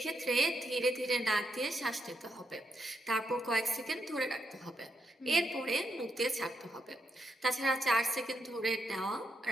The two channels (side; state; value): both; normal; correlation 0.81